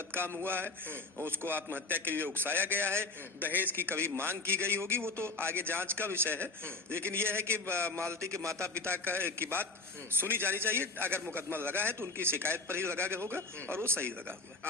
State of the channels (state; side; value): quieter; right; 3.4 dB